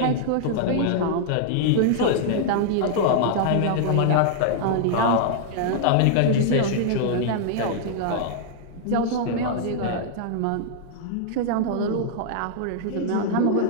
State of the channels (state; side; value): different; both; correlation -0.01